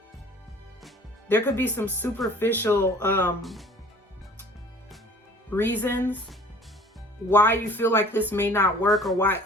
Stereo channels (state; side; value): normal; both; correlation 0.49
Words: reasons why you feel like this may not work or why